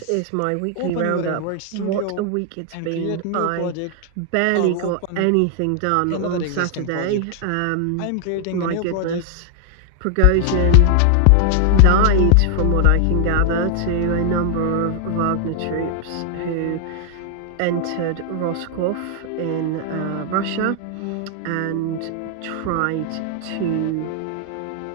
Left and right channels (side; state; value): both; different; correlation 0.00